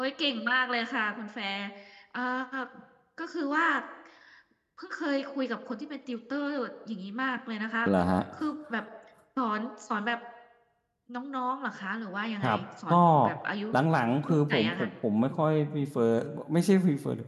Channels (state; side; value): identical; both; correlation 1.00